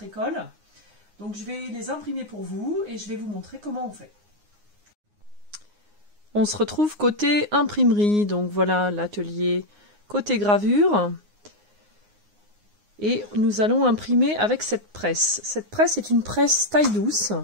école. Donc je vais les imprimer pour vous et je vais vous montrer comment on fait. On se retrouve côté imprimerie, donc voilà l'atelier côté gravure. Et nous allons imprimer avec cette presse. Cette presse est une presse taille douce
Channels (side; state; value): left; late; 9.6 ms